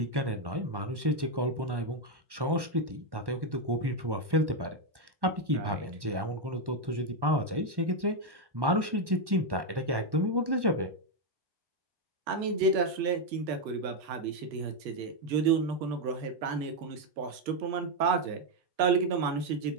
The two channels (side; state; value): left; late; 1.1 ms